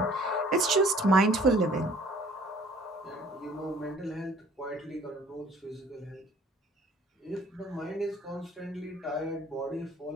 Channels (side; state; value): both; normal; correlation 0.54